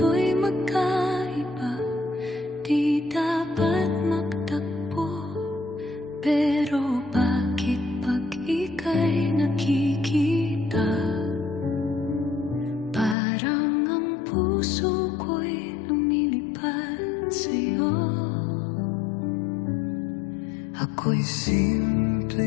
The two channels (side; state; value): right; drops out; at 13.2 s